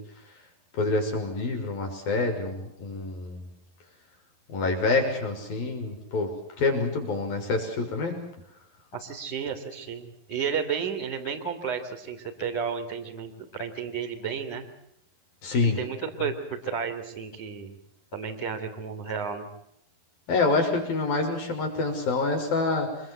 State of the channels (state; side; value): late; right; 11 ms